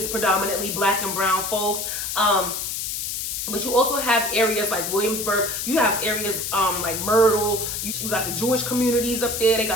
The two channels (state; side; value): noise; left; hiss, 3 dB below the sound